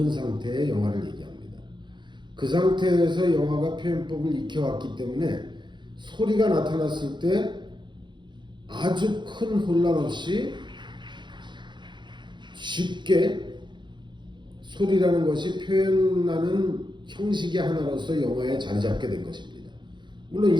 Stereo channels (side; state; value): left; late; 0.22 ms